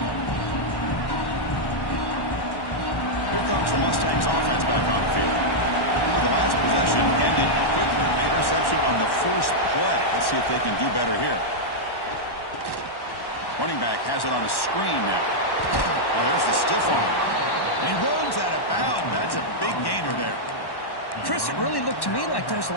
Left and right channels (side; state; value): right; late; 1.1 ms